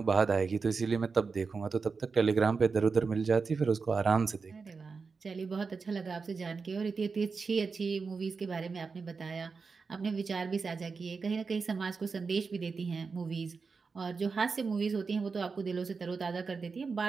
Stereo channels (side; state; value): left; quieter; 4.8 dB